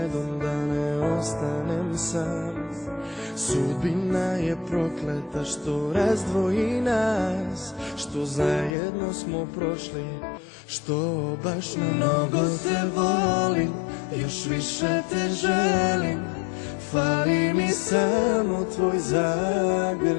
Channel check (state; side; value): drops out; right; at 8.7 s